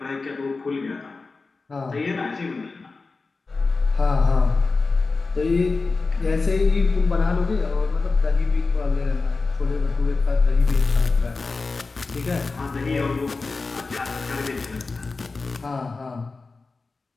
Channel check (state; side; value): quieter; right; 3.9 dB